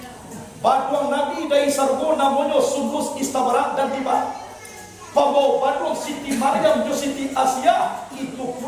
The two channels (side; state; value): both; identical; correlation 1.00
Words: baduang Nabi dari sargo namanya Sundus Istabara dan Tiba Pabau Badung Siti Maryam jo Siti Asia itu